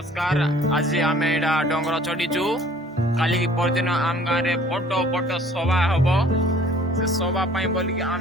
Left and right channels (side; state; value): both; normal; correlation 0.53